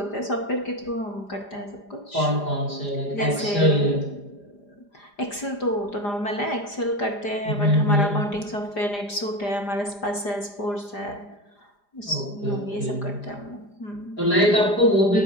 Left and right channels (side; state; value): right; late; 4.9 ms